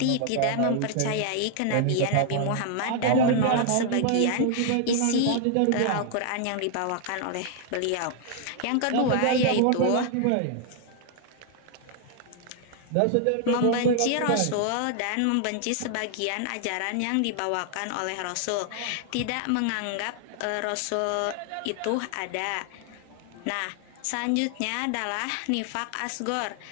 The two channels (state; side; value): different; both; correlation 0.00